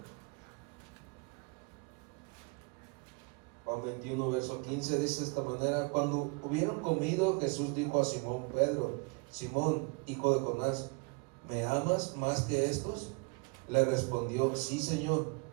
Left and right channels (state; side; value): quieter; left; 31.0 dB